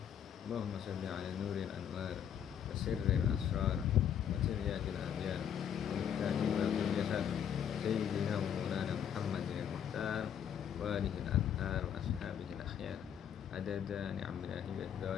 Allahumma salli ala nuril anwar wa sirril asrar wa tiryakil abyar wa mikahi wa bil jasad Sayyidina wa maulana Muhammad bin Muhtar wa alihi al-anhar wa ashabihi al-akhyar adada ni'amillahi wa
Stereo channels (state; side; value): quieter; right; 8.8 dB